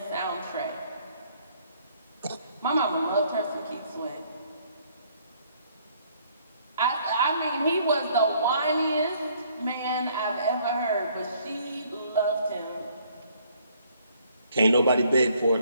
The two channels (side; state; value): both; inverted; correlation -0.63